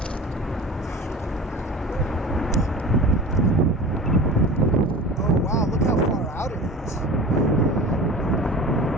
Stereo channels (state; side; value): normal; both; correlation 0.36